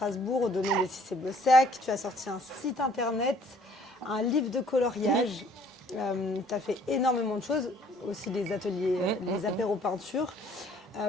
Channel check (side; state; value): both; normal; correlation 0.58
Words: au domaine de Cissé-Bossac. Tu as sorti un site internet, un livre de coloriage. Tu as fait énormément de choses, aussi les ateliers, les apéros peinture.